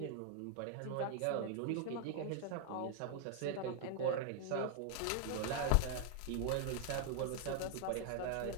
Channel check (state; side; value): different; both; correlation 0.00